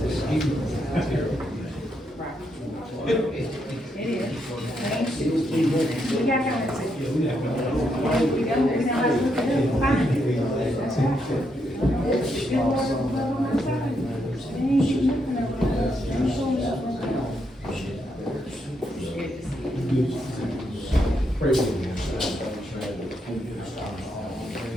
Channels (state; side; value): normal; both; correlation 0.79